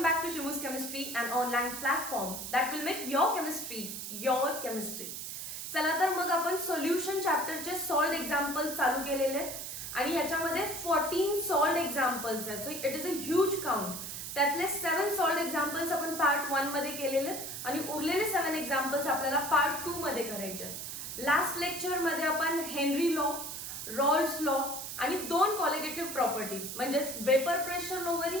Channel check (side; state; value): right; noise; hiss, 7 dB below the sound